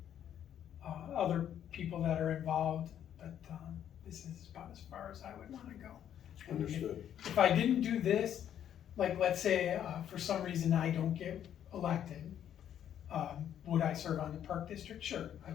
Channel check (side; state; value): right; quieter; 10.0 dB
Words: other people that are involved, but this is about as far as I would want to go. And Understood. if I didn't do this, like let's say for some reason I don't get elected, would I serve on the park district? Sure, I